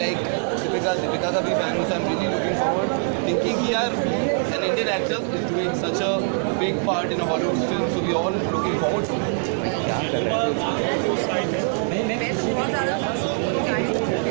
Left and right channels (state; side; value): silent; left; 60 dB below the other